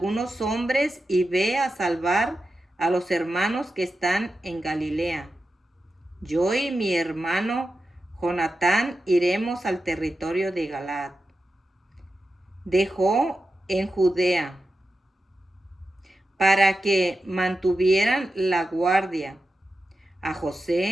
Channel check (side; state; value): both; normal; correlation 0.91